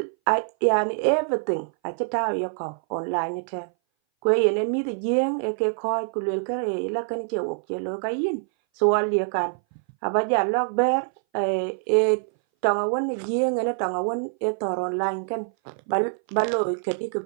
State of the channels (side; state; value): left; silent; 59 dB below the other